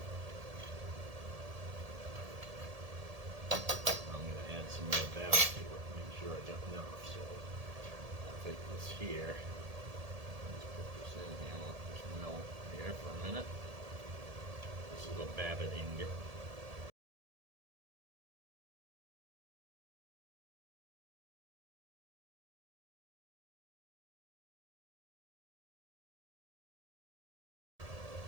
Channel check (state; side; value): late; left; 1.7 ms